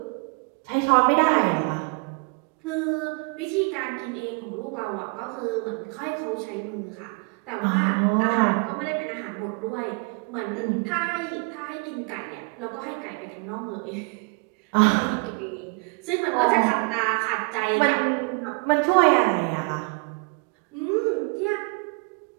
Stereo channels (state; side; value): quieter; left; 33.6 dB